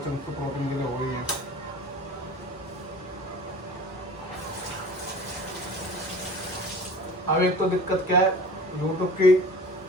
तो प्रोटीन के लिए हो ही है। अब एक तो दिक्कत क्या है, यूट्यूब की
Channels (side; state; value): both; normal; correlation 0.41